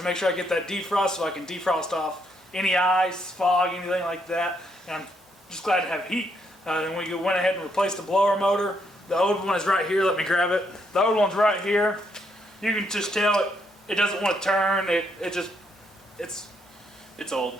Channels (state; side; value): normal; both; correlation 0.75